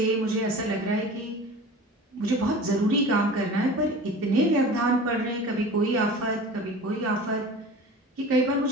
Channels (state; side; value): normal; both; correlation 0.38